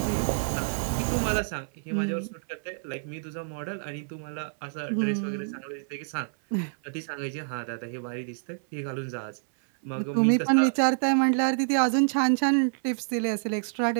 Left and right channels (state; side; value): silent; left; 60 dB below the other